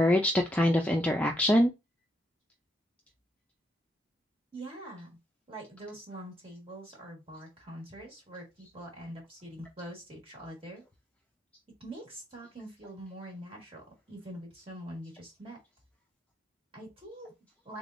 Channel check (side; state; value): both; normal; correlation 0.78